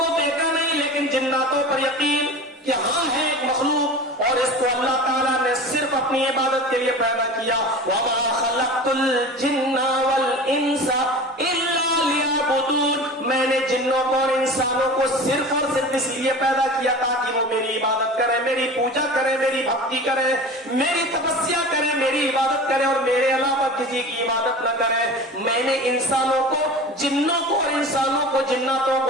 देखा नहीं लेकिन जिन्नातों पर यकीन कि हाँ है एक मखलूक, और इसको अल्लाह ताला ने सिर्फ अपनी इबादत के लिए पैदा किया। वमा खलक़तुल जिन्ना वल इंसा इल्ला लियअबुदून, मैंने जिन्नों को और इंसानों को सिर्फ और सिर्फ इसलिए पैदा किया ताकि वो मेरी इबादत करें, मेरी पूजा करें, मेरी भक्ति करें, मेरी तपस्या करें, मेरी इबादत करें, और मेरे अलावा किसी की इबादत न करें। मैंने इंसानों को, जिन्नों को और इंसानों को, जिन्नातों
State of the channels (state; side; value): normal; both; correlation 0.35